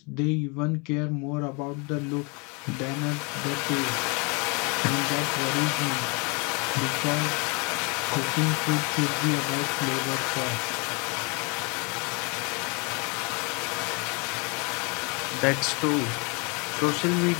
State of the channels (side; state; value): right; quieter; 31.6 dB